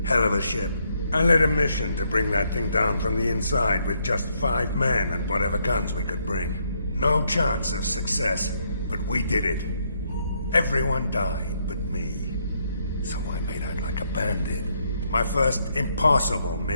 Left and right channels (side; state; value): both; inverted; correlation -0.75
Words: Hell of a ship. I led a mission to bring that thing down from the inside with just 5 men and whatever guns we could bring. No chance of success, but we did it. Everyone died but me. So I made out like a bandit. My first impossible